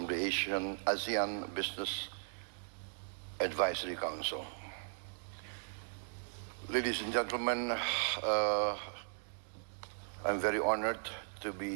the ASEAN Business Advisory Council. Ladies and gentlemen, I'm very honored to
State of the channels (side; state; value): left; silent; digital silence